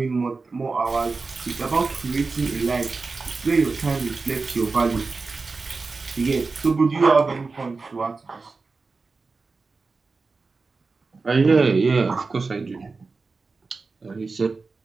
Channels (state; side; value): quieter; left; 4.1 dB